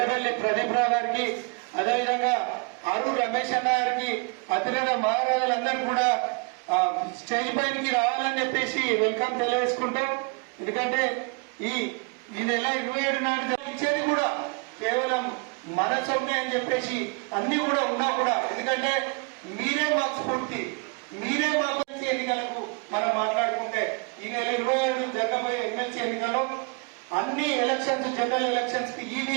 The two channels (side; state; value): left; quieter; 33.0 dB